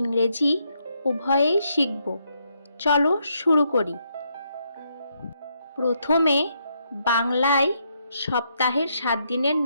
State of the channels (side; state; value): both; inverted; correlation -0.77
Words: উভয়েই শিখব। চলো শুরু করি। প্রথমে বাংলায় সপ্তাহের 7 দিনের